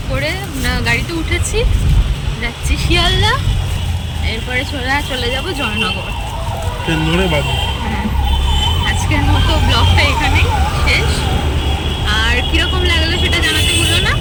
করে গাড়িতে উঠেছি, যাচ্ছি শিয়ালদা, এরপরে চলে যাব জয়নগর। হ্যাঁ, আজকের মতো ব্লগটা এখানেই শেষ। আর কীরকম লাগলো সেটা জানাতে ভুলো না।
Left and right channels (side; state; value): both; identical; correlation 1.00